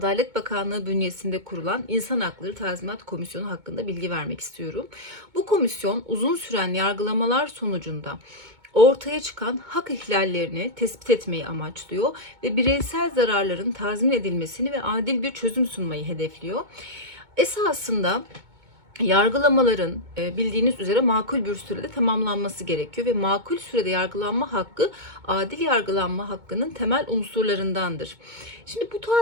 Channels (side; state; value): left; late; 2.2 ms